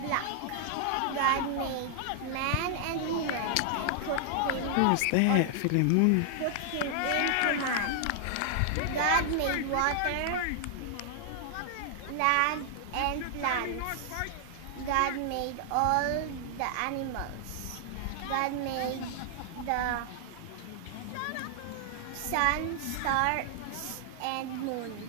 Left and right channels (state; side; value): different; both; correlation -0.01